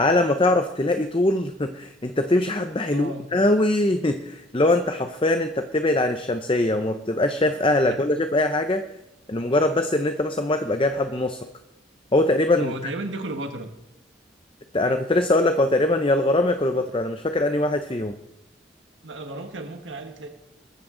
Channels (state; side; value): normal; both; correlation 0.52